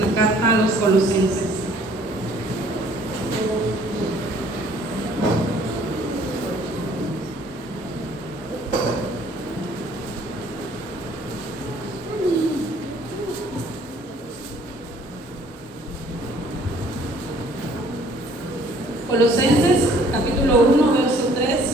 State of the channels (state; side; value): normal; both; correlation 0.58